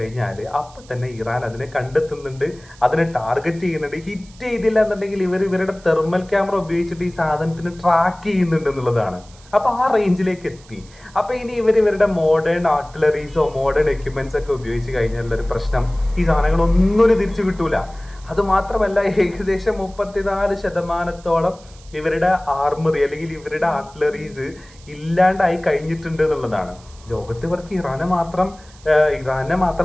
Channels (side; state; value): right; noise; hiss, 25 dB below the sound